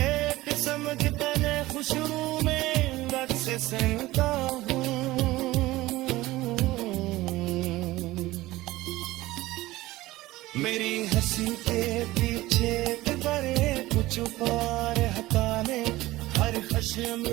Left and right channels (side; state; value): left; quieter; 18.0 dB